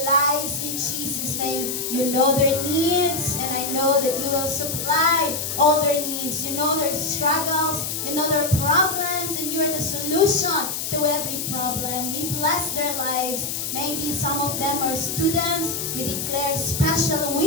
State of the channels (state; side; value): noise; left; hiss, 3 dB below the sound